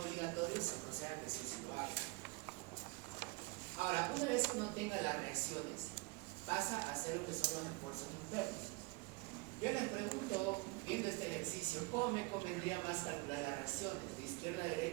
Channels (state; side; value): quieter; left; 25.9 dB